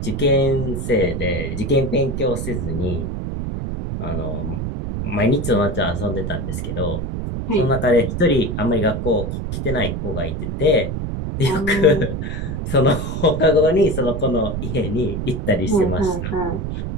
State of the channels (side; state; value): right; noise; rumble, 3 dB below the sound